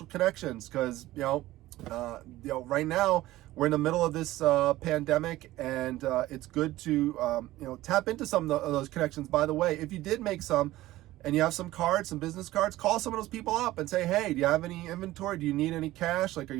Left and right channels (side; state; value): left; quieter; 16.5 dB